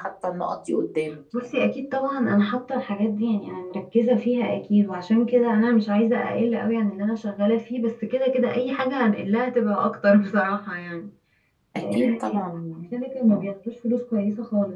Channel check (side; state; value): both; identical; correlation 1.00